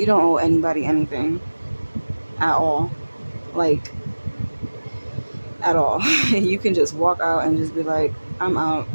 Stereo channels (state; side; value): inverted; both; correlation -1.00